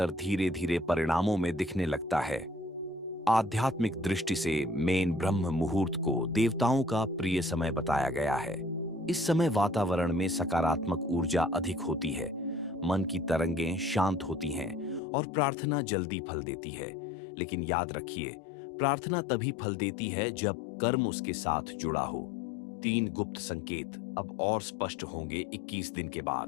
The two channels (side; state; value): right; drops out; at 15.0 s